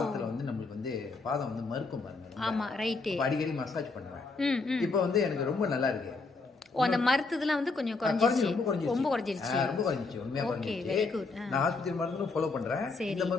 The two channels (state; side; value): quieter; right; 3.9 dB